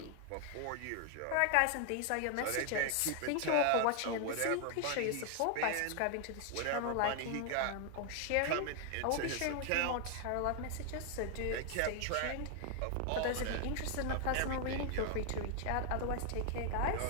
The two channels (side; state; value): both; different; correlation 0.00